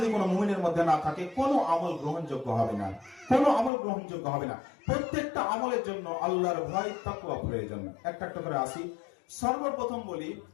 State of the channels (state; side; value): drops out; right; at 3.7 s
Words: কোনো মুমিনের মধ্যে না থাকে, কোনো আমল গ্রহণযোগ্য হবে না, কোনো আমল গ্রহণযোগ্য হবে না। প্রত্যেকটা আমলের জন্য আল্লাহর ভয়, তাকওয়া প্রয়োজন। একটা একটা করে আসি। সর্বপ্রথম বলি,